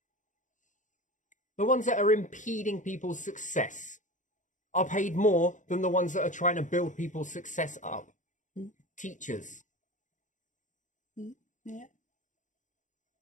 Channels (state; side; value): late; right; 0.36 ms